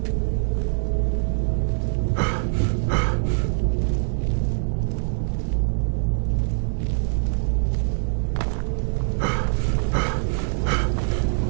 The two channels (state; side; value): silent; left; 60 dB below the other